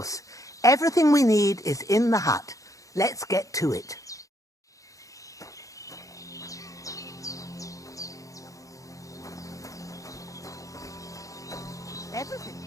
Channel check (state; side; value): late; right; 0.16 ms